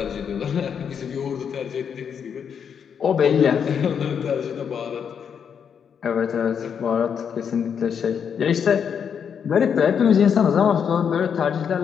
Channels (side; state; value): right; quieter; 7.4 dB